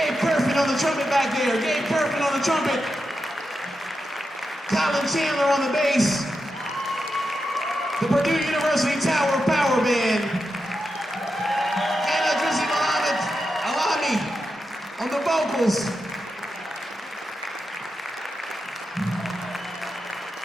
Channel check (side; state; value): both; normal; correlation 0.88